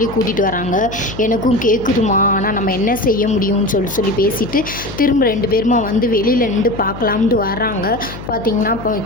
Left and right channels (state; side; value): noise; left; hum, 12 dB below the sound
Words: கூட்டிகிட்டு வராங்க. எனக்கும் கேட்குதுமா, ஆனால் நம்ம என்ன செய்ய முடியும்னு சொல்லி பேசிட்டு திரும்ப 2 பேருமா வந்து வெளியில் நின்று பார்க்கலாம்னு வர்றாங்க. பார்த்தீங்கன்னா இப்போ